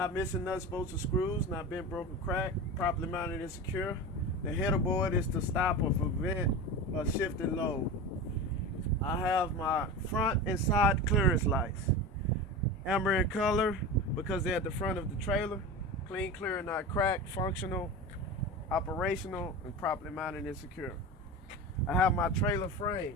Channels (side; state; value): both; normal; correlation 0.27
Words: missing nuts, bolts, or screws. Not bent, broken, cracked. Properly mounted and secure. The header board is to stop or prevent a shifted load. I have my front and side clearance lights. Amber in color because they're at the front of the trailer. Clean, clear, and not cracked. Functional, operational, and properly mounted and secure. I have my trailer